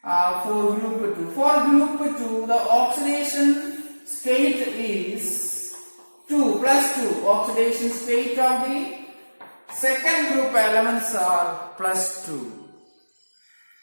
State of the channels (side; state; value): both; inverted; correlation -1.00